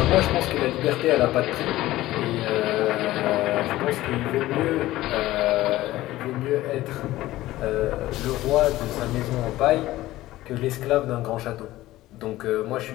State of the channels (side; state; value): right; quieter; 16.3 dB